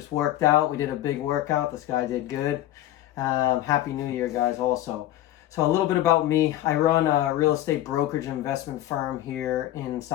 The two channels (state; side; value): quieter; right; 14.0 dB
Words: worked out. We did a big workout. This guy did good. Happy New Year, guys, also. So a little bit about me. I run a real estate brokerage investment firm here in